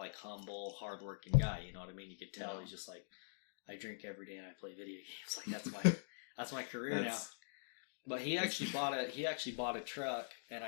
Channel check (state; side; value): silent; right; digital silence